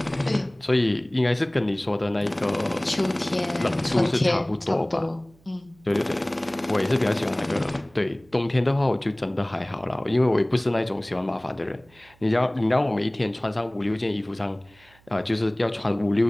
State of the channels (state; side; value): noise; right; hum, 30 dB below the sound